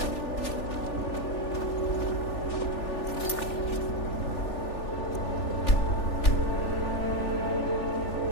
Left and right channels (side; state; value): right; late; 3.4 ms